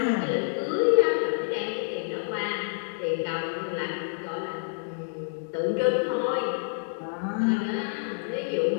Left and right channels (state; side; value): silent; right; digital silence